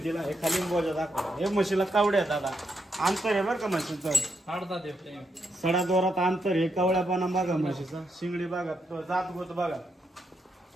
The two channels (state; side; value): normal; both; correlation 0.81